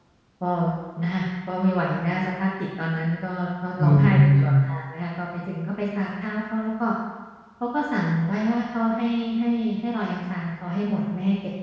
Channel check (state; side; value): identical; both; correlation 1.00